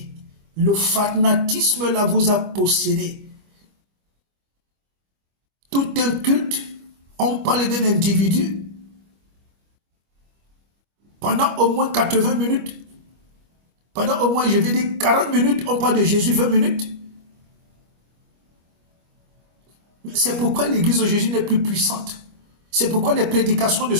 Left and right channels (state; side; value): late; left; 25 ms